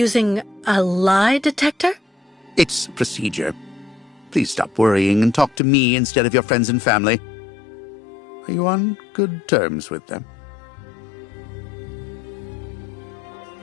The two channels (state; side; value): drops out; right; at 5.6 s